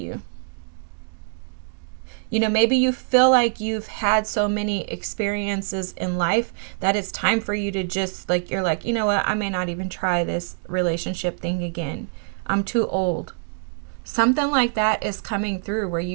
You know, maybe you feel like you've had so many experiences in life that it's time for you to just you're like, you know what, I may not even try this relationship thing again. I'm too old. Something like that is coming through where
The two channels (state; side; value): silent; left; 62 dB below the other